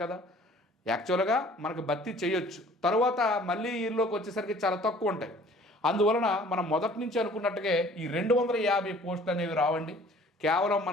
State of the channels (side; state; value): both; normal; correlation 0.52